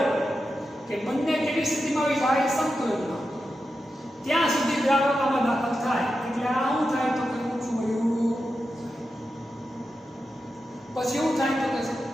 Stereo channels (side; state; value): both; normal; correlation 0.89